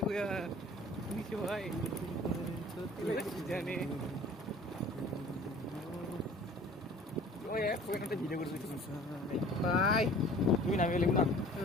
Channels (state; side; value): normal; both; correlation 0.48